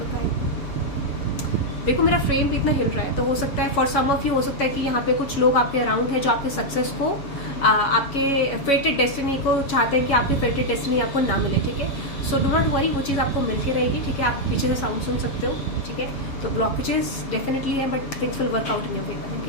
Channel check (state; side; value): late; right; 7.2 ms